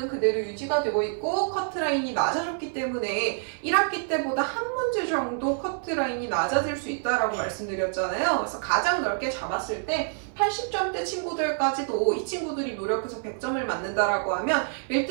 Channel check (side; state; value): left; silent; 57 dB below the other